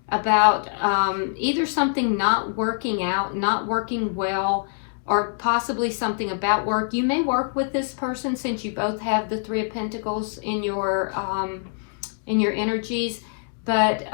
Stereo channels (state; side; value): silent; right; digital silence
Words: about either something not working out, not working well, or possibly something about work. You may work with this person since you both have the Three of Pentacles in your energies. But